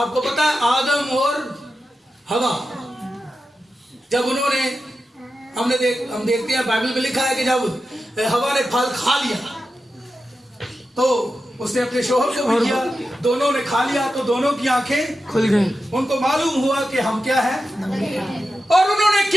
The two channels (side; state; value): both; normal; correlation 0.91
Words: पता है आदम और हवा, जब उन्होंने, हम देखते हैं बाइबल में लिखा है कि जब हवा ने फल खा लिया तो उसने अपने शोहर को भी किया, दोनों ने खा लिया, तो दोनों की आंखें खुल गई। उनको मालूम हुआ कि हम क्या है। और उन्होंने